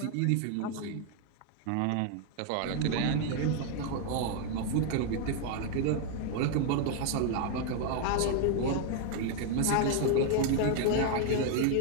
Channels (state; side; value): different; both; correlation 0.00